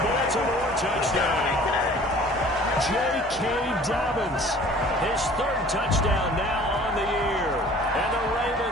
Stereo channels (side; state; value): both; normal; correlation 0.49